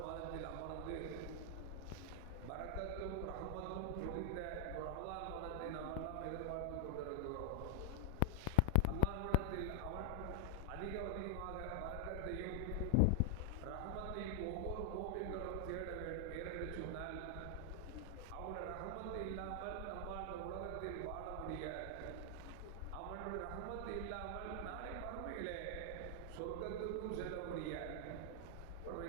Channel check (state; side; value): different; both; correlation 0.00